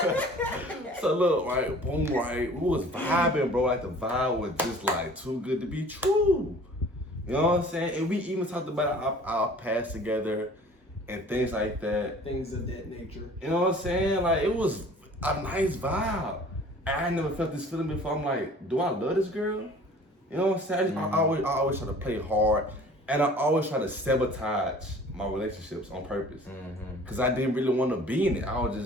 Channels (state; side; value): normal; both; correlation 0.48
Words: So look, right, boom, right. We was vibing, bro. Like the vibe was just like too good to be true. You know what I'm saying? And we even talked about our past together and things like that. Things of that nature. You know what I'm saying? Like it was a nice vibe. I never felt this feeling before. I'm like, do I love this girl? You know what I'm saying? I always try to play hard, and I always try to sabotage my relationships on purpose. Cause I didn't really want to be in it. I was